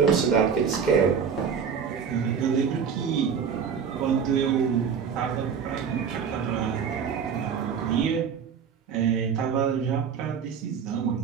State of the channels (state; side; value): quieter; left; 6.9 dB